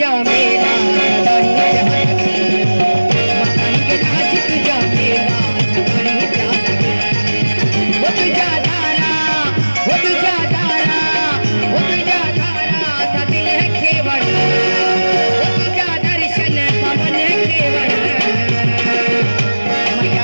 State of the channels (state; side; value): inverted; both; correlation -1.00